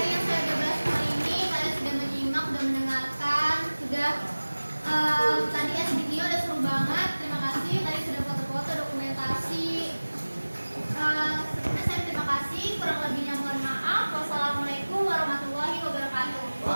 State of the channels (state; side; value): inverted; both; correlation -1.00